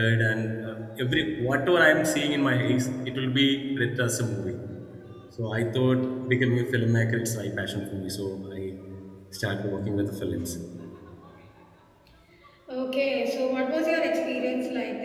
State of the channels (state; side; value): identical; both; correlation 1.00